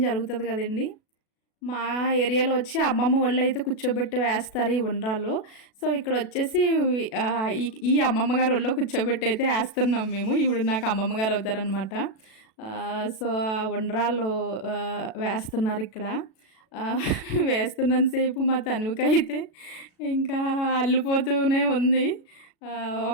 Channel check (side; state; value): right; late; 37 ms